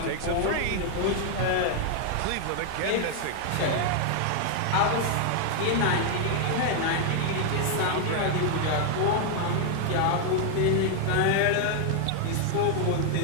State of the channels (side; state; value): both; different; correlation 0.00